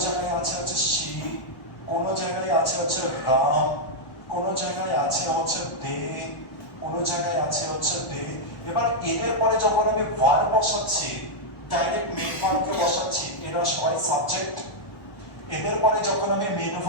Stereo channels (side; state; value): right; late; 1.1 ms